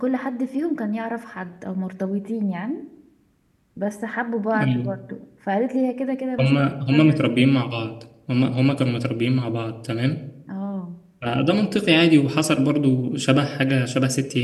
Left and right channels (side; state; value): both; identical; correlation 1.00